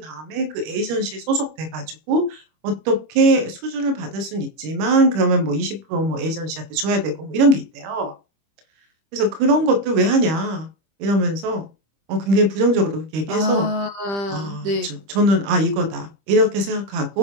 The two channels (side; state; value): left; late; 25 ms